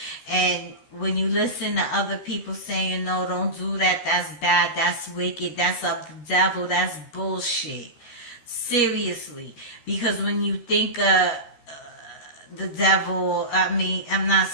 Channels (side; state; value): right; late; 13 ms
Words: And when you listen to other people saying, no, don't do that, that's bad, that's wicked, that's of the devil, that's bullshit. Seriously. Because when you think of the devil, I'm not